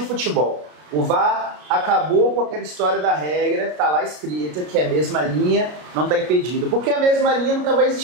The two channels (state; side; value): late; left; 33 ms